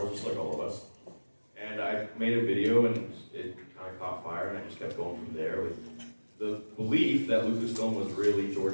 just like all of us. And I made a video, and it kind of caught fire, and I just kept going from there with the belief that Lucasfilm was really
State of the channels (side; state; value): both; inverted; correlation -1.00